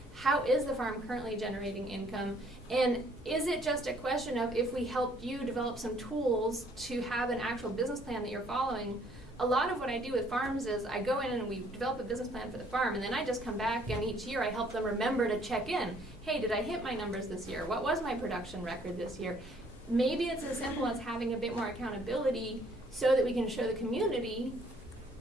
how is the farm currently generating income, and is it just a question of if we help you develop some tools to have an actual business plan that you're following. A lot of what I do with farms is I go in and we develop a business plan for the farm, and then I just come back and each year I help them remember to check in. Hey, did I hit my numbers this year? What was my production record this year? Maybe it's as simple as having a bit more accountability so that we can show the community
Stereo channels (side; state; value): both; normal; correlation 0.62